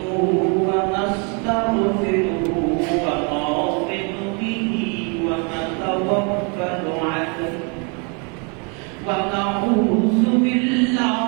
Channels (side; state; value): left; quieter; 35.2 dB